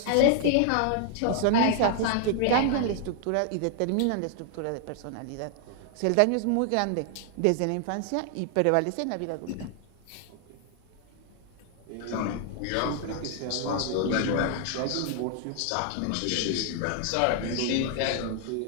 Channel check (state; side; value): different; both; correlation 0.00